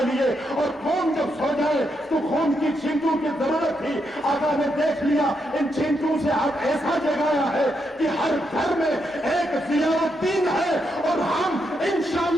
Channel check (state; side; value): normal; both; correlation 0.81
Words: لیے، اور قوم جب سو جائے تو قوم کی چھینٹوں کی ضرورت تھی۔ آقا نے دیکھ لیا ان چھینٹوں سے آپ ایسا جگایا ہے کہ ہر گھر میں ایک ضیاء الدین ہے، اور ہم